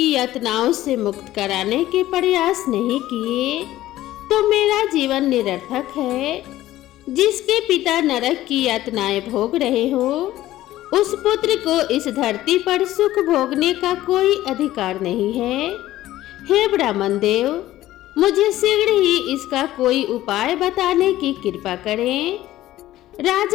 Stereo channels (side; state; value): right; quieter; 14.9 dB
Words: यातनाओं से मुक्त कराने के प्रयास नहीं किए तो मेरा जीवन निरर्थक है। जिसके पिता नरक की यातनाएं भोग रहे हो उस पुत्र को इस धरती पर सुख भोगने का कोई अधिकार नहीं है। हे ब्राह्मण देव, मुझे शीघ्र ही इसका कोई उपाय बताने की कृपा करें।